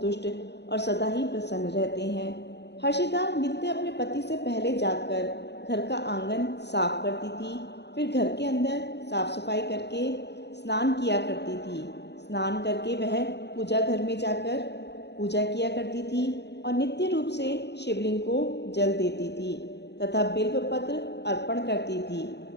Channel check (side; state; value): right; late; 0.50 ms